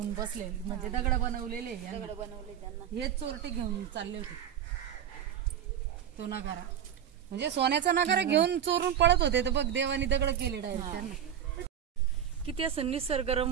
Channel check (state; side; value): quieter; left; 9.5 dB